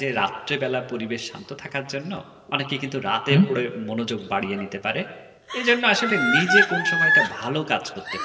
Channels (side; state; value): both; identical; correlation 1.00